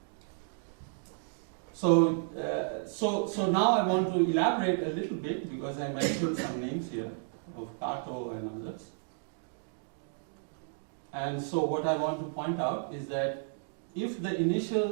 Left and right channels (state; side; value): silent; left; digital silence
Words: So now I want to elaborate a little bit, because I mentioned some names here of Kato and others. And so what I want to point out is that if the